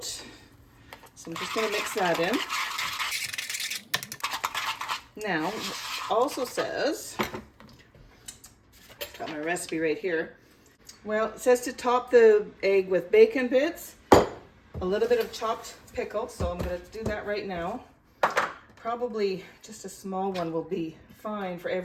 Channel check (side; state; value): both; identical; correlation 1.00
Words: So I'm just going to mix that in. Now, also says, got my recipe right here. Well, it says to top the egg with bacon bits, a little bit of chopped pickle, so I'm going to do that right now. Probably just a small one will be fine for